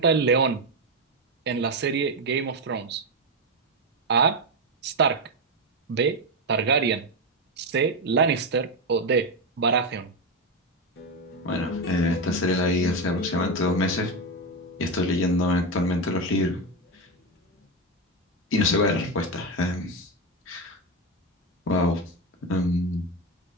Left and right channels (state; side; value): normal; both; correlation 0.11